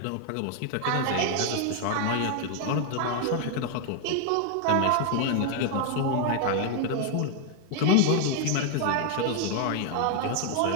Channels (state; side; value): different; both; correlation 0.00